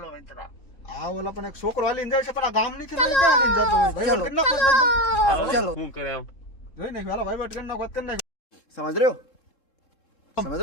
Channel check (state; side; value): late; right; 3.7 ms